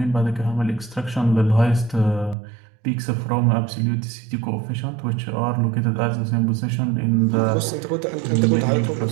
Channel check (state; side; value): drops out; left; at 2.4 s